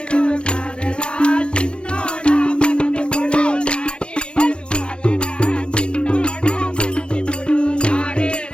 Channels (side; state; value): right; late; 0.055 ms